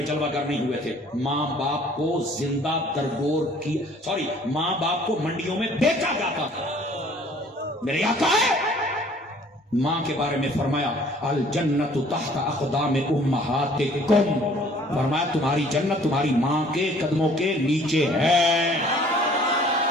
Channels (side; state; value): both; normal; correlation 0.55